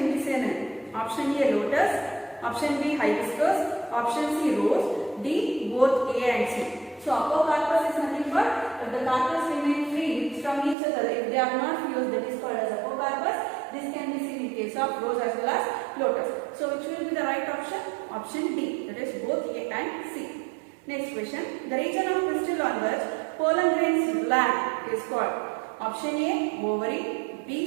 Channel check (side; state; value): left; drops out; at 10.8 s